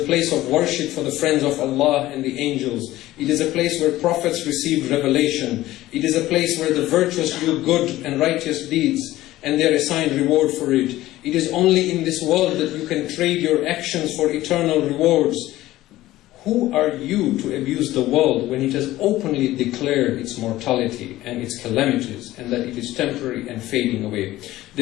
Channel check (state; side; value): quieter; right; 16.0 dB